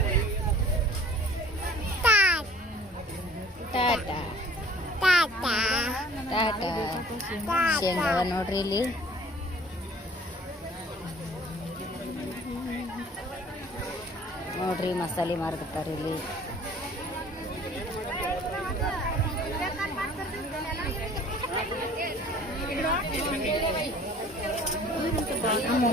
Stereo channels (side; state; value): both; normal; correlation 0.51